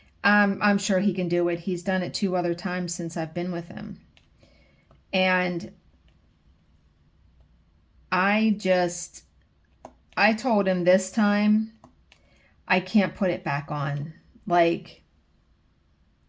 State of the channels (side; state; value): both; identical; correlation 1.00